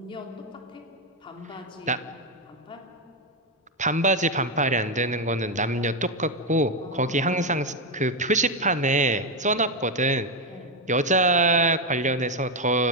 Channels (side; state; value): both; normal; correlation 0.06